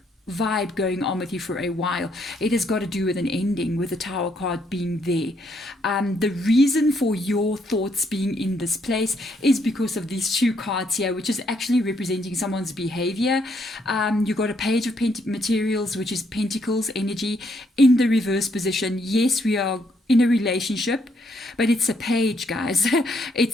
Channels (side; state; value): both; normal; correlation 0.73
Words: vibe going on with you for a while. It has got to do with an ending, with the Tower card being there. The reason for your thoughts being in this place is because of these two cards here, which is actually representing someone's behavior. You got a Page of Materials, which is Pentacles energy in the reverse position. Yes, we are in a relationship, but it's a page, guys.